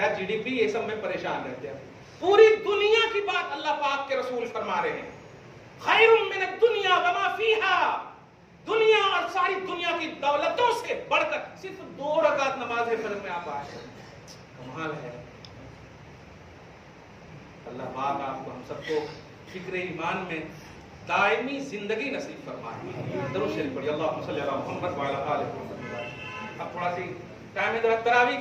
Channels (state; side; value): identical; both; correlation 1.00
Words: جی ڈی پی یہ سب میں پریشان رہتے ہیں. پوری دنیا کی بات اللہ پاک کے رسول فرما رہے ہیں, خیر من الدنیا وما فیہا, دنیا اور ساری دنیا کی دولتوں سے بڑھ کر صرف 2 رکعت نماز فجر میں آپ آئے. کمال ہے. اللہ پاک آپ کو ہم سب کو فکر ایمان میں دائمی زندگی نصیب فرمائے. درود شریف پڑھیے, اللہم صلی علی محمد وعلی آل محمد. اب تھوڑا سی ٹائم ہے تراویح